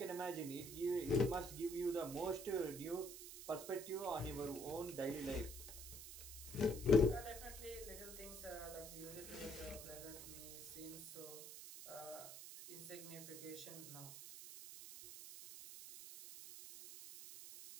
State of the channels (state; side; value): noise; right; hiss, 10 dB below the sound